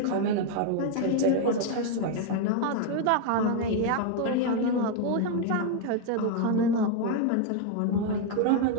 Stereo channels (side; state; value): both; different; correlation 0.00